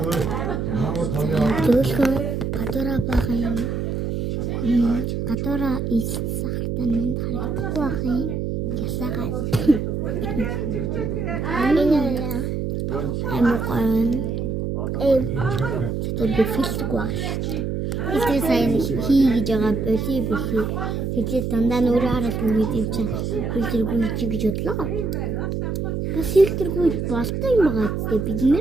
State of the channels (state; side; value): noise; right; hum, 2 dB below the sound